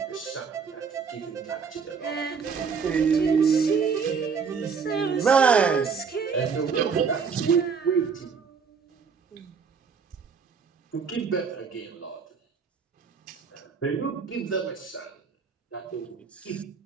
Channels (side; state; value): left; quieter; 5.8 dB